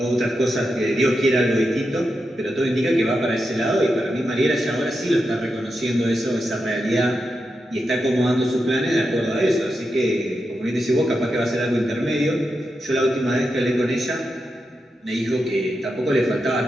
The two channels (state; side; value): normal; both; correlation 0.87